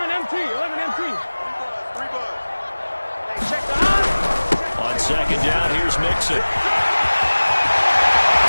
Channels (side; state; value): both; inverted; correlation -1.00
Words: MT. Hey, check the high. On 2nd down, here's Mixon.